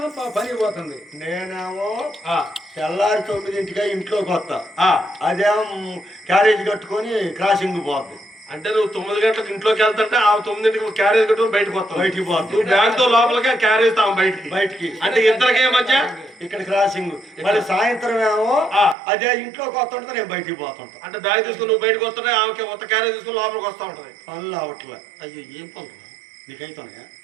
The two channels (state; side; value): drops out; left; at 18.9 s